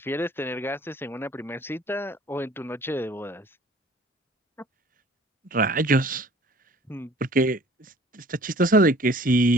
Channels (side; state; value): both; normal; correlation 0.51